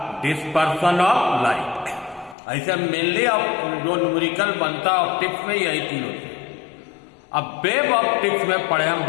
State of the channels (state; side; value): drops out; right; at 2.4 s